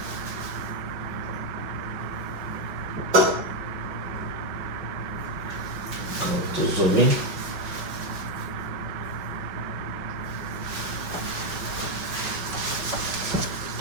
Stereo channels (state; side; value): late; left; 5.6 ms